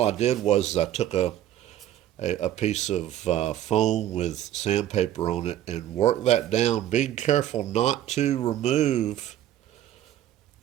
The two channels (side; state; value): left; quieter; 12.1 dB